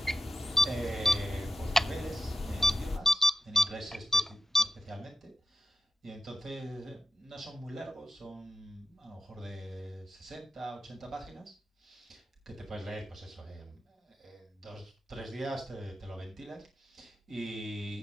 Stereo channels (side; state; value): both; normal; correlation 0.89